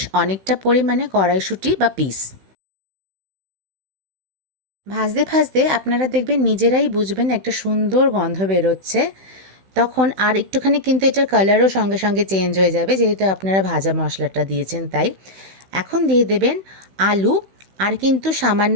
অনেকটা পরিমাণে কড়াইশুঁটি বা পিস। ভাজতে ভাজতে আপনারা দেখবেন নিজেরাই বুঝবেন একটা সুন্দর গন্ধ বেরোচ্ছে, তখন আর একটুখানি কিন্তু এটার কালারও সঙ্গে সঙ্গে চেঞ্জ হয়ে যাবে, যেহেতু আপনারা ভাজা মশলাটা দিয়েছেন তাই। এখন দিয়ে দেবেন আলু, আর কিন্তু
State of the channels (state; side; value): late; left; 16 ms